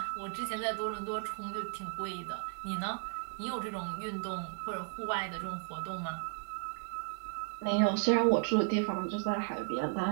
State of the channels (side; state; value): left; quieter; 37.5 dB